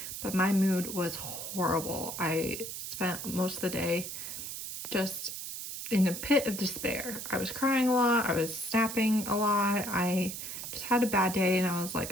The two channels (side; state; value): right; noise; hiss, 7 dB below the sound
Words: but my mood was horrible. I spent most of the day just in a pit of despair. I was crying a lot. I was snapping a lot. I just had a bad day, and I was